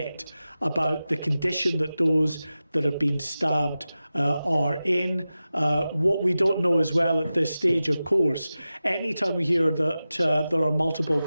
about the condition that those that have been stabbed are in. What we don't know as well at this stage, of course, anytime we hear that there are multiple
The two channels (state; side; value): inverted; both; correlation -0.94